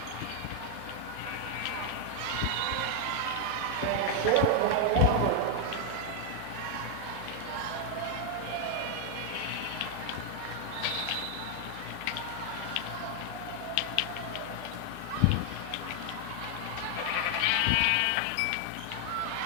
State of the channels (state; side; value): different; both; correlation 0.00